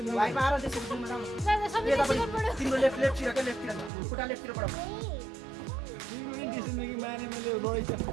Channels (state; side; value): drops out; left; at 3.9 s